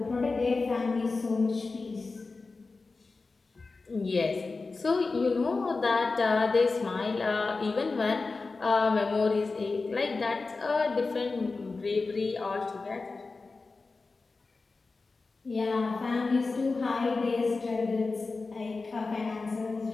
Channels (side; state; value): right; quieter; 3.9 dB